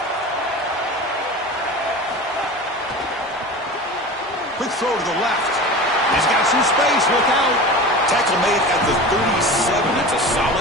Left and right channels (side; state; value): both; normal; correlation 0.33